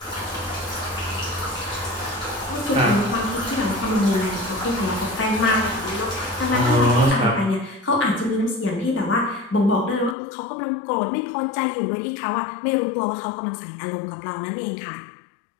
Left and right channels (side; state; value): right; drops out; at 10.2 s